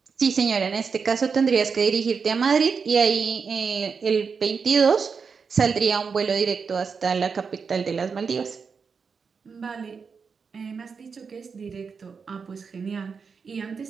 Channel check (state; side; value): quieter; left; 5.6 dB